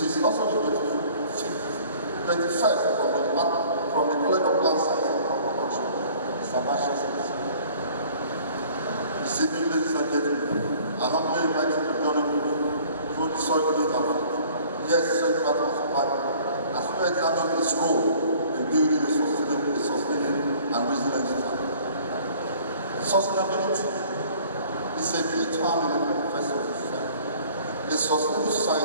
also the 21st from the College of Plant Science and Crop Production. Mr. Vice Chancellor, this evening, ladies and gentlemen, I humbly invite you to join me through the soil data. Yes, Central Survival, as well as examine its role in building a sustaining and resilient society. Sustainability is a key term in the manifesto of society. A sustainable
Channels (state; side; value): inverted; both; correlation -0.52